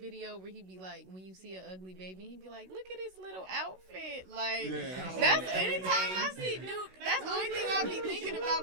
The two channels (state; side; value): late; left; 16 ms